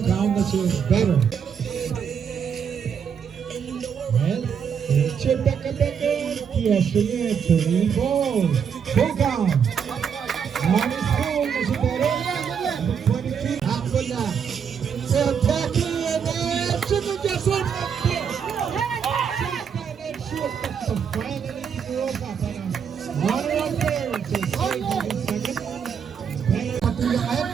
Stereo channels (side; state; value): left; quieter; 7.2 dB